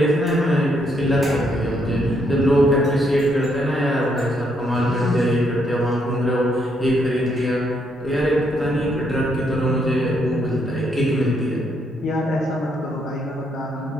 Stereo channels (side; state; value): both; normal; correlation 0.74